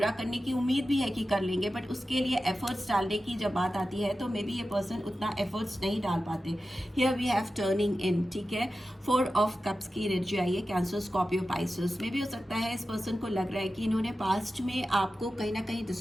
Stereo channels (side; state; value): both; normal; correlation 0.93